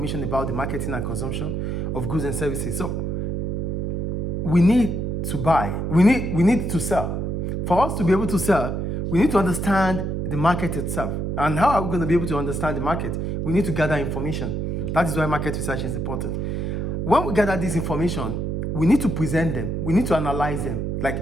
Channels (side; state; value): right; noise; hum, 1 dB below the sound